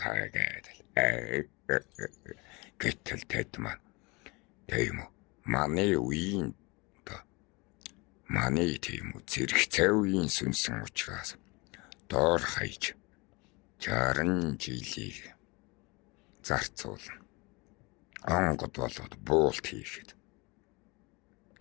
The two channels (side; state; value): right; quieter; 26.9 dB